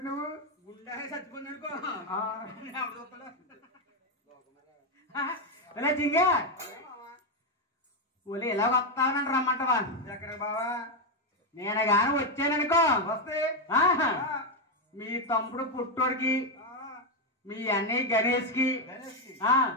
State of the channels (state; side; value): normal; both; correlation 0.05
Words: నువ్వు గుండె చచ్చిపోయింది అనుకో చింగా ఒలి ఎలా వస్తావనండి రమ్మంటవా ఎక్కడ బావా నేను గాని వచ్చాననుకో వస్తే మీ తమ్ముడు పుట్టోడికి మీ అన్నయ్య గణేష్ కి